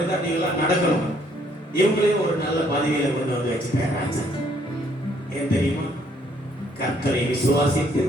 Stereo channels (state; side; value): normal; both; correlation 0.66